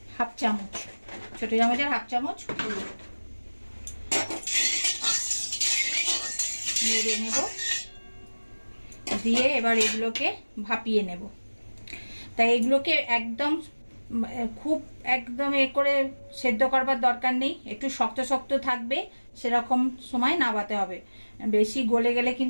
হাফ চামচ, ছোট চামচের হাফ চামচ হলুদ নেড়ে নেব। দিয়ে এবার এগুলোকে ভাপিয়ে নেব। তাই এগুলোকে একদম খুব একদম করে সেদ্ধ করবার দরকার নেই, একটু শক্ত শক্ত থাকবে, সেরকম সময় নাবাতে হবে। বেশি গলে গেলে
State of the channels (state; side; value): inverted; both; correlation -1.00